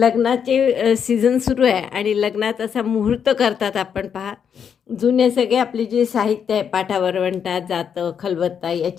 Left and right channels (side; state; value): right; quieter; 7.5 dB